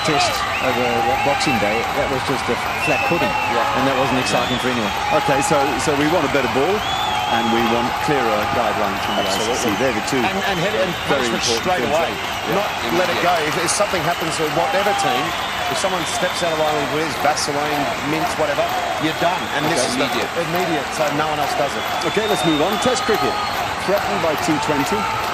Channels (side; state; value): both; identical; correlation 1.00